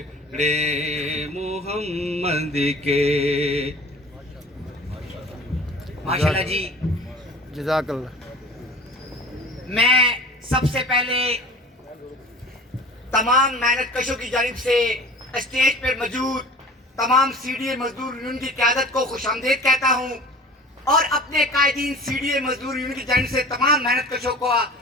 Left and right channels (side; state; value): both; normal; correlation 0.41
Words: محمد کے. ماشاءاللہ جی. جزاک اللہ. میں سب سے پہلے تمام محنت کشوں کی جانب سے اسٹیج پر موجود تمام سی ڈی اے مزدور یونین کی قیادت کو خوش آمدید کہتا ہوں اور اپنے قائدین سی ڈی اے مزدور یونین کی جانب سے تمام محنت کشوں کو